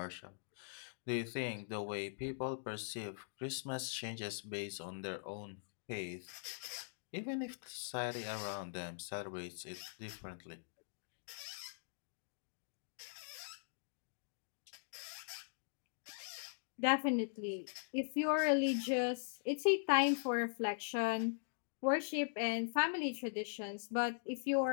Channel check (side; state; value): right; silent; digital silence